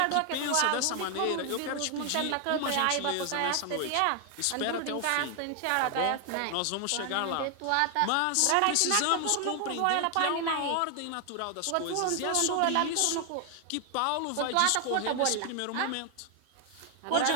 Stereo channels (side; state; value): both; different; correlation 0.00